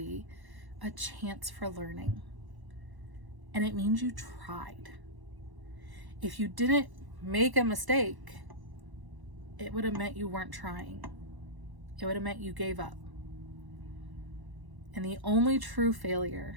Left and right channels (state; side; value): late; left; 1.0 ms